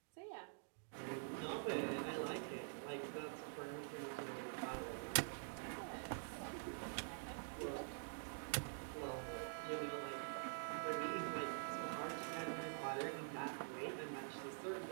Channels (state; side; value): silent; left; digital silence